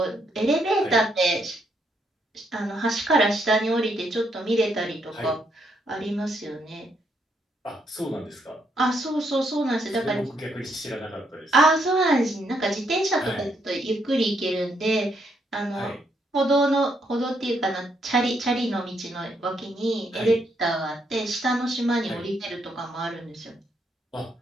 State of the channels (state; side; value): normal; both; correlation 0.75